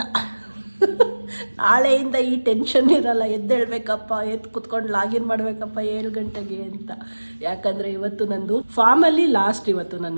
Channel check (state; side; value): inverted; both; correlation -1.00